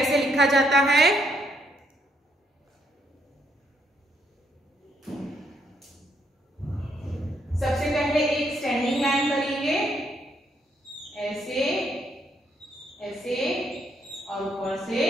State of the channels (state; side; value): normal; both; correlation 0.73